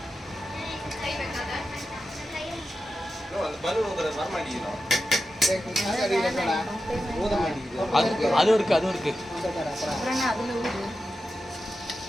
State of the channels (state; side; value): normal; both; correlation 0.91